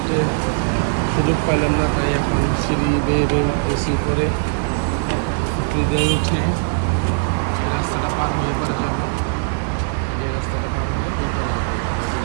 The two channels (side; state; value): left; silent; 58 dB below the other